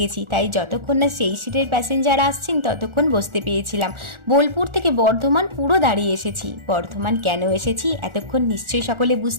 গেছি, তাই যতক্ষণ না সেই সিটের প্যাসেঞ্জার আসছেন ততক্ষণ বসতে পেয়েছিলাম। বোলপুর থেকে বর্ধমান পুরো দাঁড়িয়ে এসেছি। বর্ধমান কেন এসেছি এতক্ষণ নিশ্চয়ই সকলে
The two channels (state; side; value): late; left; 1.4 ms